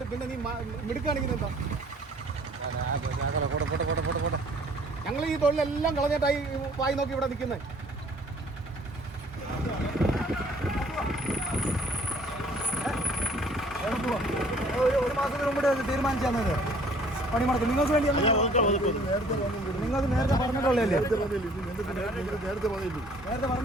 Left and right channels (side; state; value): both; normal; correlation 0.56